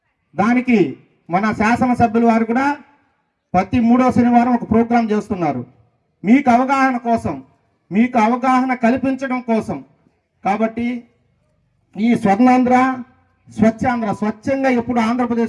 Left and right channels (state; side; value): identical; both; correlation 1.00